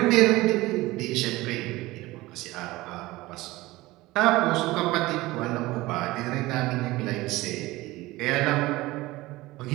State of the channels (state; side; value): quieter; left; 19.3 dB